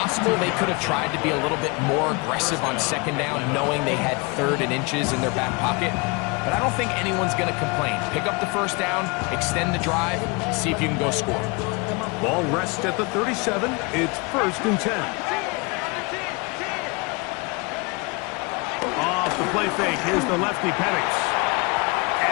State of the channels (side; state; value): right; quieter; 28.3 dB